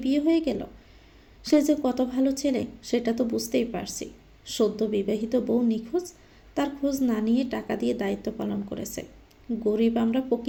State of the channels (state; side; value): identical; both; correlation 1.00